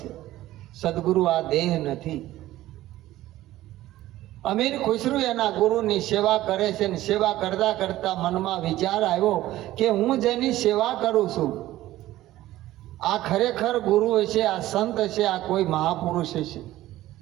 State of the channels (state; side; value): quieter; left; 15.4 dB